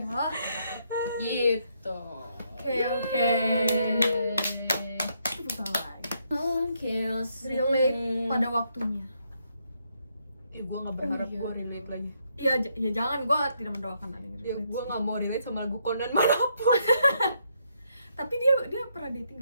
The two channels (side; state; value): both; inverted; correlation -0.75